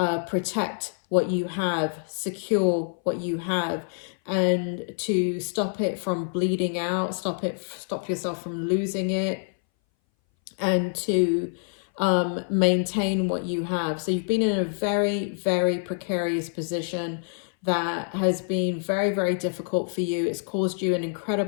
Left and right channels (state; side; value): silent; right; 59 dB below the other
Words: protect what you have, secure what you have, and to stop it from bleeding out, stop yourself from losing it, and to maintain what you have. So you've been in a very, very precarious position that has been very, very difficult for you. It's caused you an